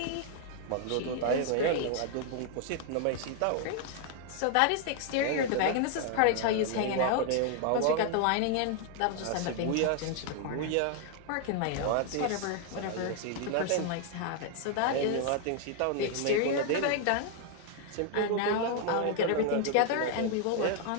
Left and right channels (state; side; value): different; both; correlation 0.00